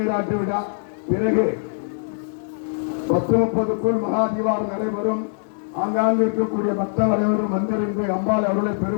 விழா. பிறகு 10:30க்குள் மகா தீபாவளி நடைபெறும். ஆங்காங்கு இருக்கக்கூடிய பக்தர் அனைவரும் வந்திருந்து அம்பாள் அவர்களை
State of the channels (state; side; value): silent; right; digital silence